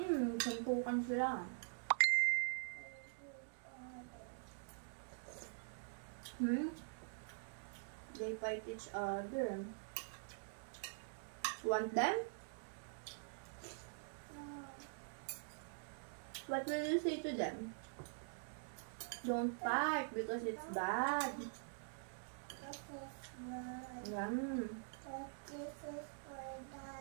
Sampukan sila. They fight each other. Want them? What will you say to them? Don't fight because it's bad. Yum. But this is for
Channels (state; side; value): silent; left; digital silence